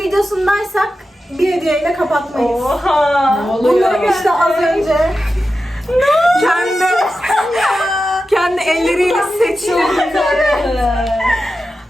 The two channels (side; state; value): both; normal; correlation 0.92